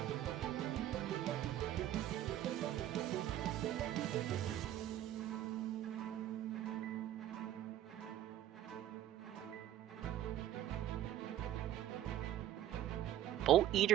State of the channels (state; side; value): quieter; left; 12.5 dB